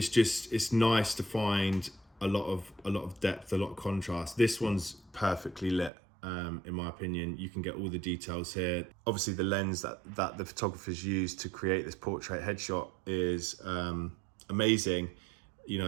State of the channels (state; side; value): drops out; left; at 5.9 s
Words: nice to find a lot of depth, a lot of contrast. This one's perfectly lit. In my opinion, you can get all the details here. Obviously, the lens that the photographers used to create this portrait headshot is amazing.